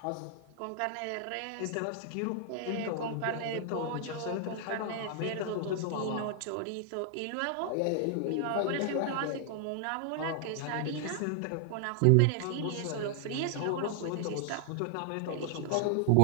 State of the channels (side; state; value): both; different; correlation 0.00